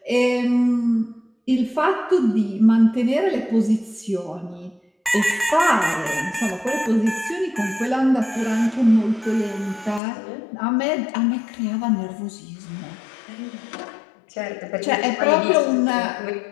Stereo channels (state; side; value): drops out; right; at 10.0 s